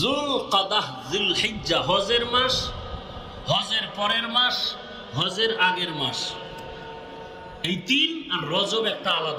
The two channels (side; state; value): both; identical; correlation 1.00